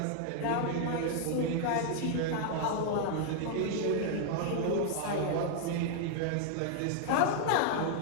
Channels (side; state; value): both; different; correlation 0.00